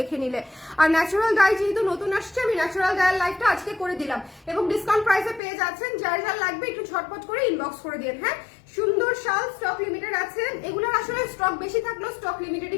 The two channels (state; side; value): drops out; right; at 5.4 s